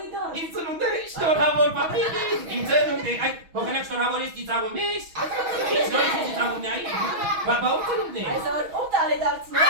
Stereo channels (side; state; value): left; late; 6.2 ms